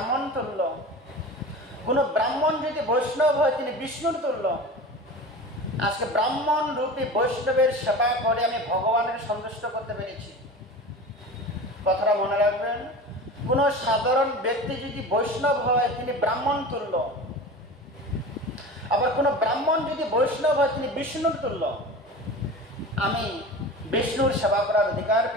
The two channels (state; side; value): normal; both; correlation 0.33